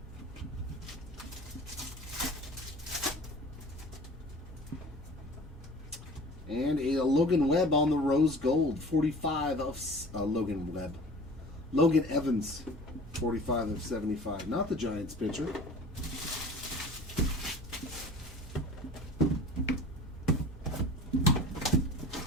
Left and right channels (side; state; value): both; normal; correlation 0.42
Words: And a Logan Webb on the rose gold. 45 of Logan Evans. 45 of 75. Not the Giants pitcher.